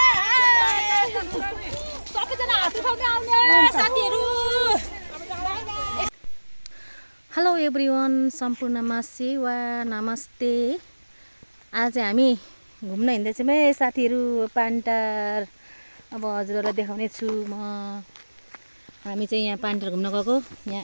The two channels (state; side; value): inverted; both; correlation -1.00